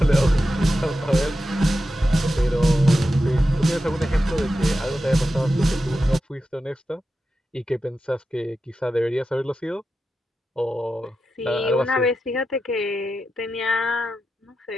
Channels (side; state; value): both; normal; correlation 0.90